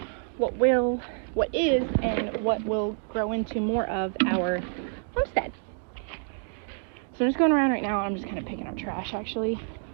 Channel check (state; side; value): silent; left; 60 dB below the other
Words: what is and what will grow into more of our homestead. So I'm just going around right now. I'm just kind of picking up trash actually,